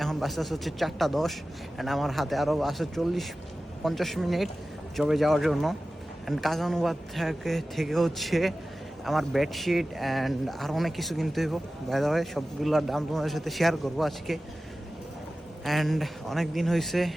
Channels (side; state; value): both; normal; correlation 0.95